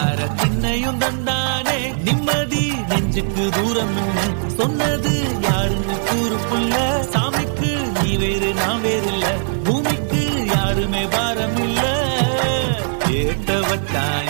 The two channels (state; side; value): silent; left; 58 dB below the other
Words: திண்ணையும் தந்தானே நிம்மதி நெஞ்சுக்கு தூரம் சொன்னது யாருன்னு கூறு புள்ள சாமிக்கு நீ வேறு நான் வேறு இல்ல பூமிக்கு யாருமே பாரம் இல்ல ஏட்ட வச்சான்